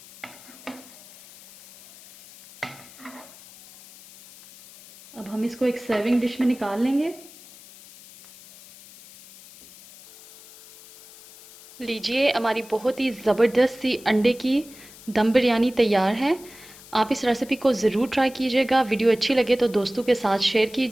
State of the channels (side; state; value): left; noise; hiss, 21 dB below the sound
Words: अब हम इसको एक सर्विंग डिश में निकाल लेंगे। लीजिए हमारी बहुत ही ज़बरदस्त सी अंडे की दम बिरयानी तैयार है। आप इस रेसिपी को ज़रूर ट्राई कीजिएगा। वीडियो अच्छी लगे तो दोस्तों के साथ शेयर